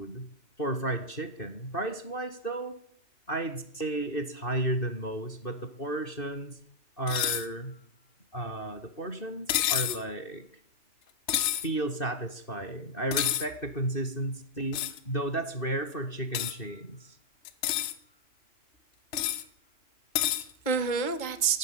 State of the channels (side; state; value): right; late; 3.2 ms